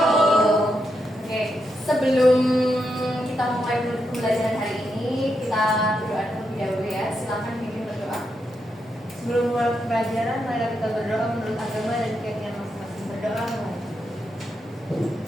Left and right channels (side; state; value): both; normal; correlation 0.83